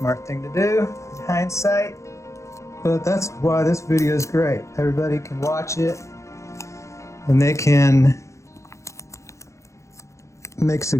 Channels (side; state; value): right; late; 0.14 ms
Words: thing to do in hindsight. But that's why this video is great. Everybody can watch it and they can make